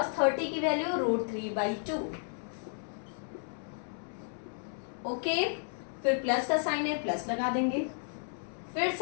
30 की वैल्यू √3/2। ओके, फिर प्लस का साइन है, प्लस लगा देंगे। फिर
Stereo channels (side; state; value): right; silent; 56 dB below the other